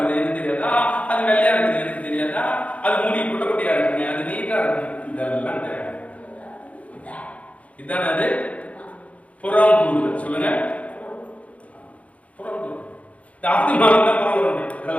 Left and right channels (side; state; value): right; late; 0.066 ms